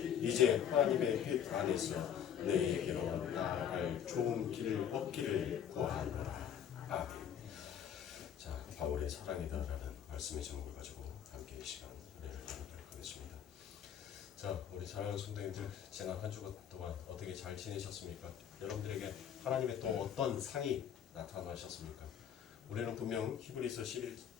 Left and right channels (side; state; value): right; quieter; 9.0 dB